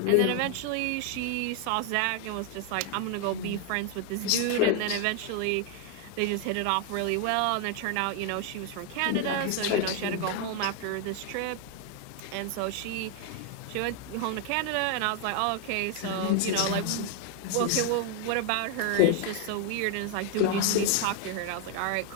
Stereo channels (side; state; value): both; different; correlation 0.00